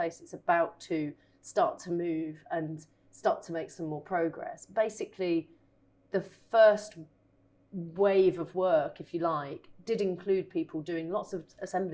It's about to start to move and start to make some more progress. Basically, the first wave of work, if you like, did include people doing lots of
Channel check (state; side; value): identical; both; correlation 1.00